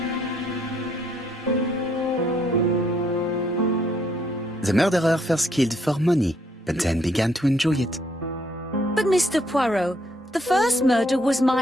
The murderer first killed for money, but then began to enjoy it. But Mr. Poirot, the first murder was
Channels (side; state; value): both; normal; correlation 0.69